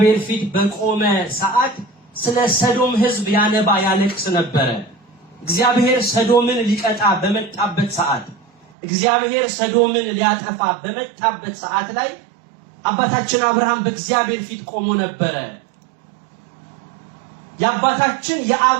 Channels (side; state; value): left; drops out; at 8.7 s